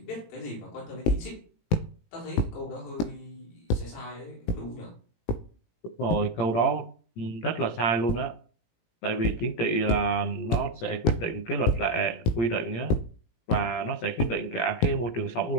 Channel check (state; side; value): late; right; 18 ms